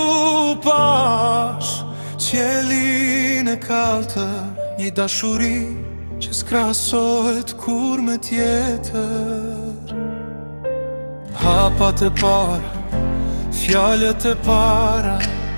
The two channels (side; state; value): both; inverted; correlation -1.00